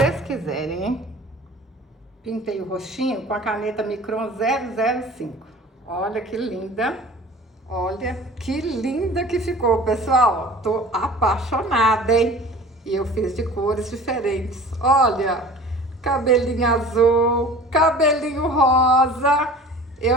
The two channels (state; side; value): normal; both; correlation 0.43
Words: quiserem, hein? Pintei o rostinho com a caneta Micron 005. Olha que linda. Olha que linda que ficou, pessoal. Tô apaixonada, hein? E eu fiz de cores diferentes. Olha, cabelinho azul, cabelinho rosa.